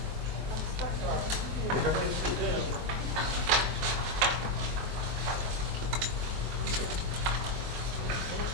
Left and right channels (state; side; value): late; left; 23 ms